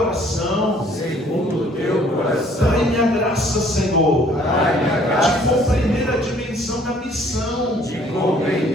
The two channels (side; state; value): both; normal; correlation 0.59